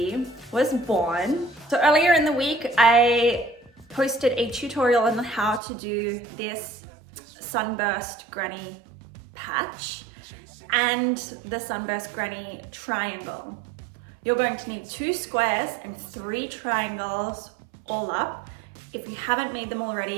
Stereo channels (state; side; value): drops out; left; at 5.6 s